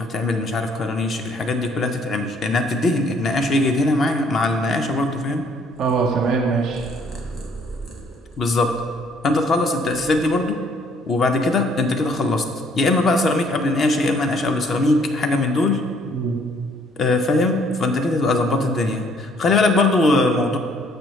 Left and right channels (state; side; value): normal; both; correlation 0.63